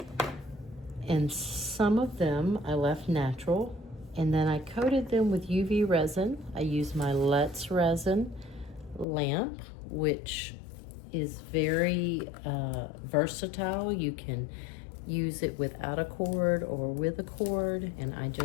And some of them I left natural, and then I coated them with UV resin. I used my Let's Resin lamp, which is very versatile. You can use it without a cord or with a cord, and I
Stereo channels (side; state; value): right; drops out; at 9.1 s